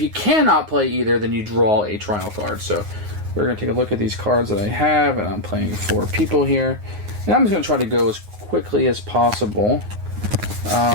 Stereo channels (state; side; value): late; left; 9.5 ms